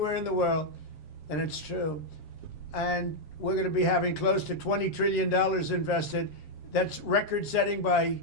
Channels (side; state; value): right; late; 7.3 ms